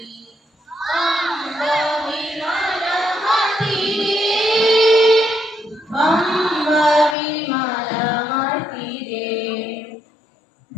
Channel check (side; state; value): right; drops out; at 7.2 s